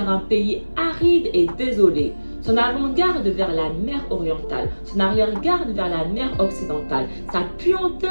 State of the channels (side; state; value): both; inverted; correlation -1.00